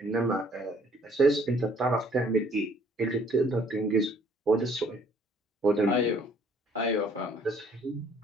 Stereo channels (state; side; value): normal; both; correlation 0.61